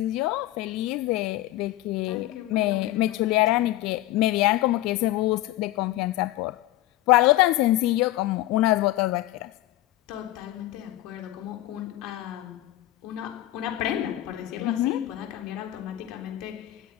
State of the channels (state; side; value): quieter; right; 15.7 dB